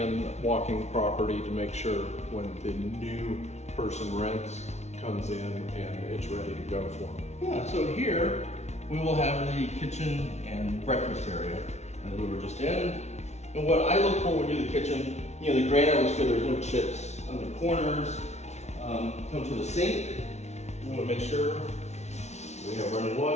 walking the property to make sure when the new person rents comes in and it's ready to go for them. Yeah, so here we will have the kitchen and breakfast area that we were just in. And what I look for when we do the kitchen, the granite looks good, there's no chips on the corners. Come to the sink, we want to make sure we have running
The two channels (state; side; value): late; right; 0.32 ms